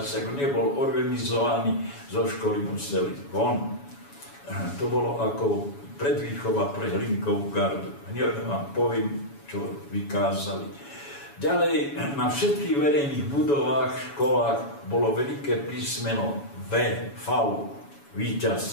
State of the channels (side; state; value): right; late; 7.1 ms